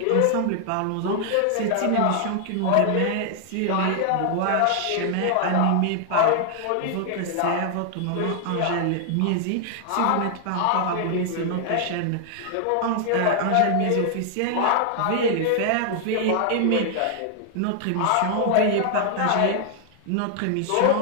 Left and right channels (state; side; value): different; both; correlation 0.00